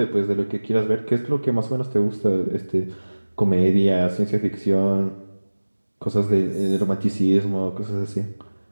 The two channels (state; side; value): inverted; both; correlation -1.00